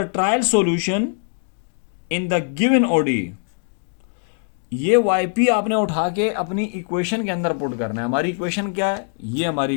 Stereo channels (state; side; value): silent; right; 58 dB below the other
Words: trial solution in the given ODE. ये वाई पी आपने उठा के अपनी इक्वेशन के अंदर पुट करना है। हमारी इक्वेशन क्या है, ये हमारी